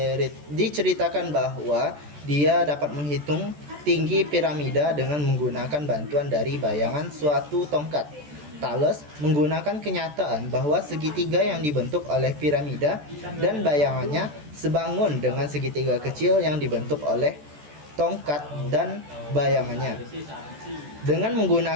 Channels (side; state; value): left; late; 14 ms